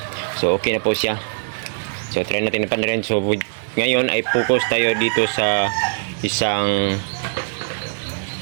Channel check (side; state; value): left; silent; digital silence